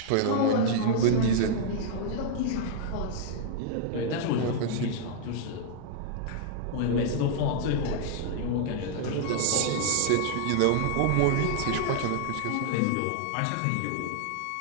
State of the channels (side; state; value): both; different; correlation -0.01